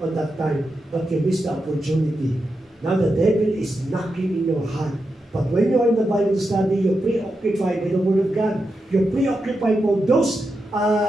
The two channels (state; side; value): normal; both; correlation 0.87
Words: that time, but you missed the opportunity. Now the devil is knocking in your heart. But when you are in the Bible study, you're preoccupied with the Word of God. You're preoccupied for those